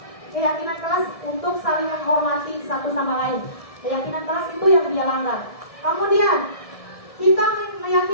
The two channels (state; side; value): late; right; 1.6 ms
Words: kelas untuk saling menghormati satu sama lain. Keyakinan kelas itu yang dia langgar. Kemudian kita